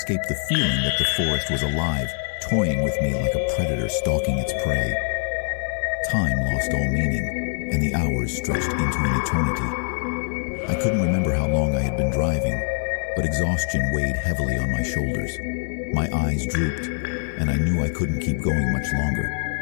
the feeling that the forest was alive, toying with me like a predator stalking its prey. Time lost all meaning, and the hours stretched into an eternity. I couldn't remember how long I had been driving, but exhaustion weighed heavily on my shoulders. My eyes drooped, and I knew I couldn't keep going much longer.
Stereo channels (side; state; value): right; silent; digital silence